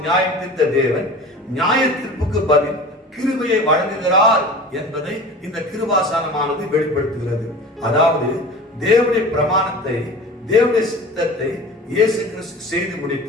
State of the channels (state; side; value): normal; both; correlation 0.38